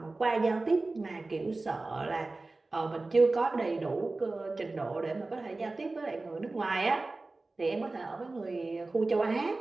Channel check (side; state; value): left; quieter; 3.3 dB